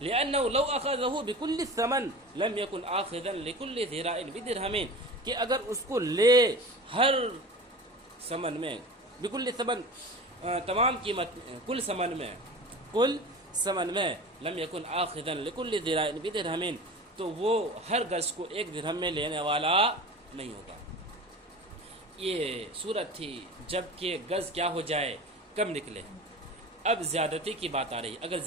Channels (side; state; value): both; normal; correlation 0.34